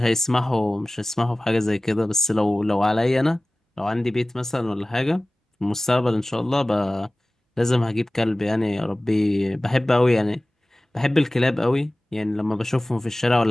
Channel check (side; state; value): both; normal; correlation 0.98